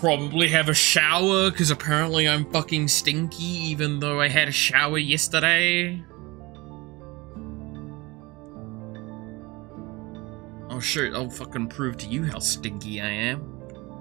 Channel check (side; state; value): left; quieter; 23.1 dB